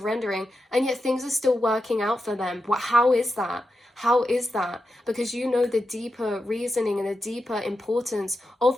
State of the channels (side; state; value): both; normal; correlation 0.88